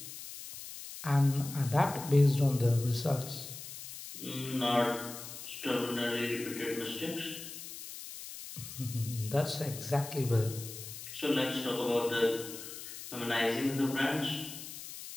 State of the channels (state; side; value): noise; left; hiss, 11 dB below the sound